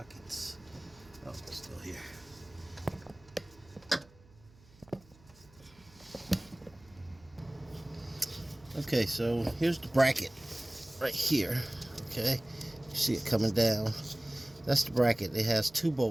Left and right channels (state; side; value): noise; right; hum, 26 dB below the sound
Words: Oh, it's still here. Okay, so here's the bracket right here. Okay, you see it coming down. That's the bracket. It has two